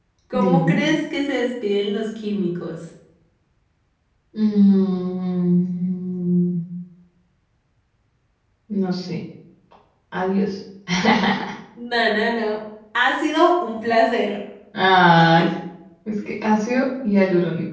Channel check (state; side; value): identical; both; correlation 1.00